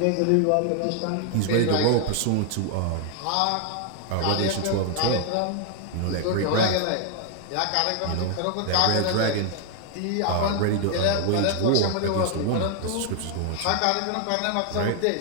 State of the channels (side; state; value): both; different; correlation 0.00